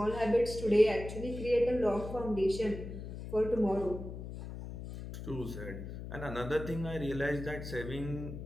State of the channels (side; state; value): left; noise; hum, 9 dB below the sound